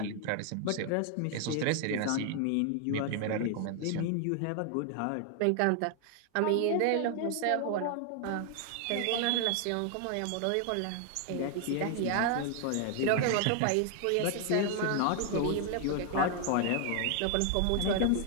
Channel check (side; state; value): both; different; correlation 0.00